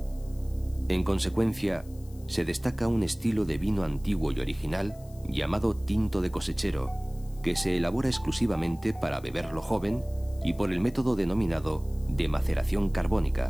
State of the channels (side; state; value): left; noise; hiss, 26 dB below the sound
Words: En consecuencia, se destaca un estilo de vino antiguo y original llamado tinto de cosechero, que se elabora exclusivamente para beberlo joven y por el método denominado de maceración